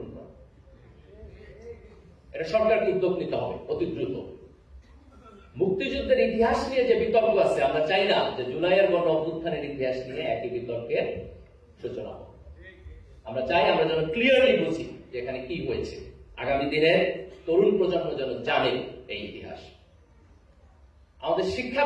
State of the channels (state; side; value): identical; both; correlation 1.00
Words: করা। এটা সরকারকে উদ্যোগ নিতে হবে অতি দ্রুত। মুক্তিযুদ্ধের ইতিহাস নিয়ে যে বিতর্ক আছে, আমরা চাই না যে জুলাইয়ের গণ অভ্যুত্থানের ইতিহাস নিয়ে একই বিতর্কের সূচনা হোক। আমরা চাই আমরা যেন ক্লিয়ারলি বুঝি যে এখানে কি হয়েছে, আগামী দিনের তরুণ প্রজন্ম যেন জানে এই ইতিহাস। আমাদের শিক্ষা